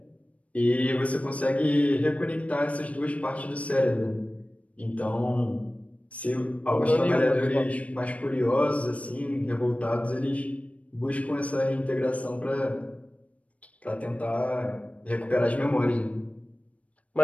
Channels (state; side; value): late; right; 0.066 ms